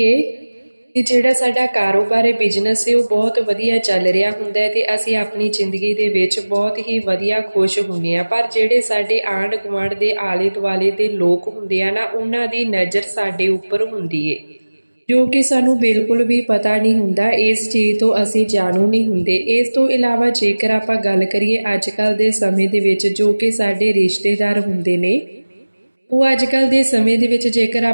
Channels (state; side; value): inverted; both; correlation -1.00